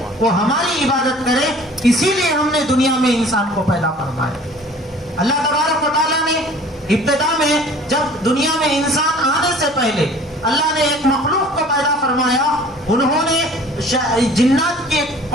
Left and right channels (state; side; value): normal; both; correlation 0.49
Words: وہ ہماری عبادت کرے، اسی لیے ہم نے دنیا میں انسان کو پیدا فرمایا۔ اللہ تبارک و تعالیٰ نے ابتدا میں جب دنیا میں انسان آنے سے پہلے اللہ نے ایک مخلوق کو پیدا فرمایا، انہوں نے جنات کی